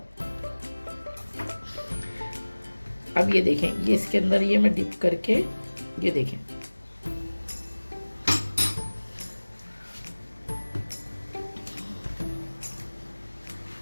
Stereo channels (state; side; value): inverted; both; correlation -1.00